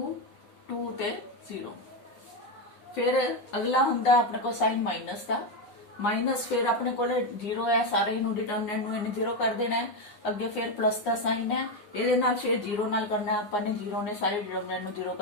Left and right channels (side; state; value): right; late; 9.7 ms